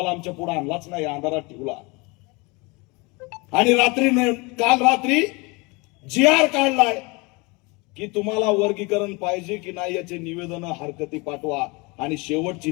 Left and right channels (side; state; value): right; quieter; 27.1 dB